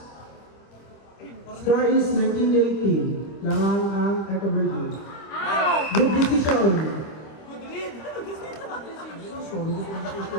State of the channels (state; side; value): late; right; 25 ms